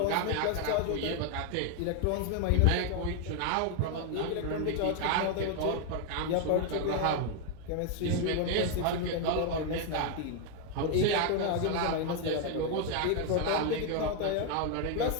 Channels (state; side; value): different; both; correlation 0.01